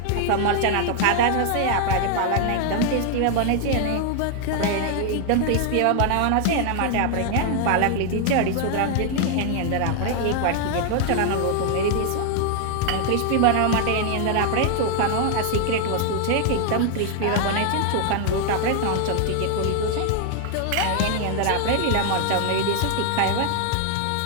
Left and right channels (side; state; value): both; different; correlation 0.00